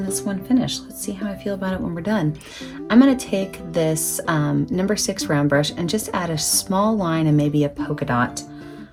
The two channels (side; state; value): both; identical; correlation 1.00